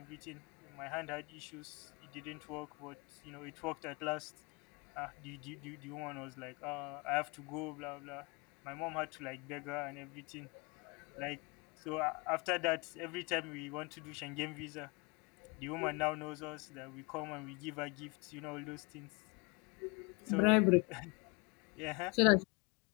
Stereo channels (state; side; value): quieter; right; 28.7 dB